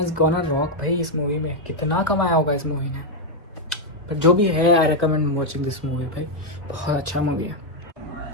gonna rock भाई। इस मूवी में कितना कमाया होगा इस मूवी ने, पर जो भी है I recommend watching this movie भाई, बहुत अच्छा मूवी है।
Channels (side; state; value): both; normal; correlation 0.01